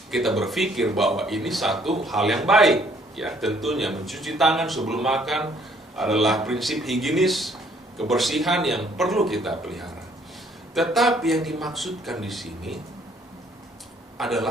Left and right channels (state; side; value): normal; both; correlation 0.63